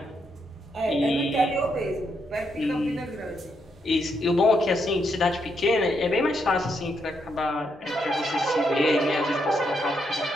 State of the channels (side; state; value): both; normal; correlation 0.78